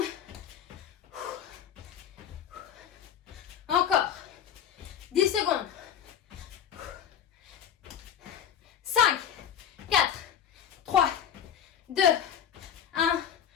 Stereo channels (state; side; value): quieter; right; 9.1 dB